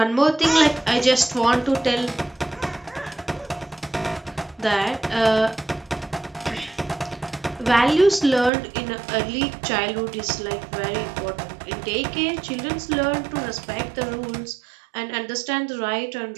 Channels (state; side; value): drops out; left; at 8.5 s